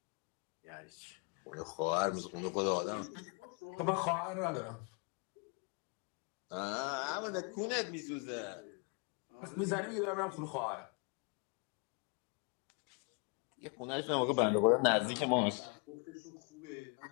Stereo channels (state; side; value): quieter; right; 35.8 dB